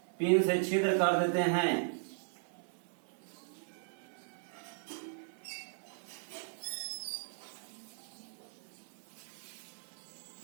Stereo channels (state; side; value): silent; left; 53 dB below the other